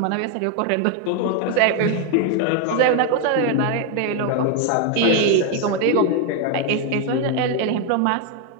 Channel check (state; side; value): different; both; correlation 0.01